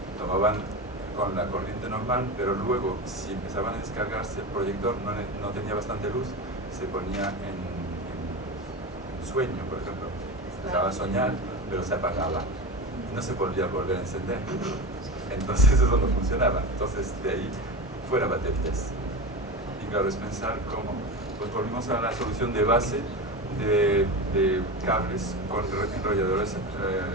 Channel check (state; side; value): normal; both; correlation 0.23